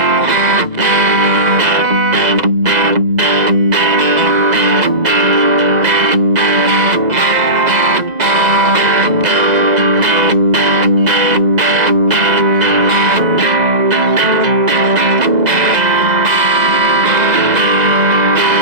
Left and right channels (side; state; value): left; late; 2.0 ms